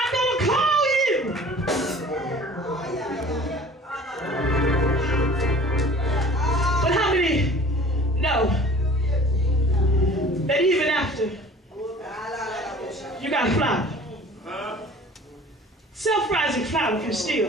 going to call you. But how many know that even after you got flour, self-rising flour can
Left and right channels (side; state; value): both; normal; correlation 0.47